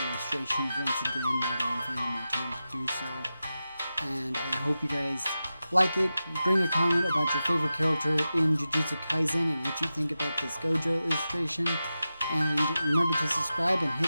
once again now that I'm finding more time to do so. And I hope you guys like it. Bring a comment about your favorite character in Jujutsu Kaisen and what you think about this Gojo illustration. And remember to subscribe and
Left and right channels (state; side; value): inverted; both; correlation -0.93